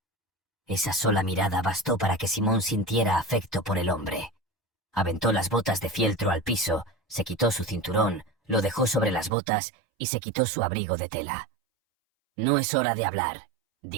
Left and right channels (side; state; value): left; drops out; at 9.3 s